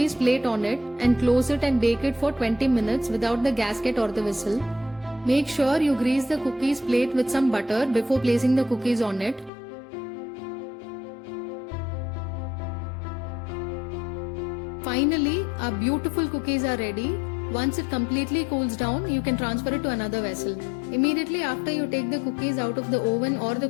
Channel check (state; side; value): drops out; right; at 9.5 s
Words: plate on it and close it and bake it for 20 minutes without the gasket or the whistle. Make sure you grease the cookies plate with some butter before placing the cookies on it. Finally, our beautiful cookies are ready. Once it completely cools down, you can transfer it to another vessel. Immediately after you take the cookies out of the oven or the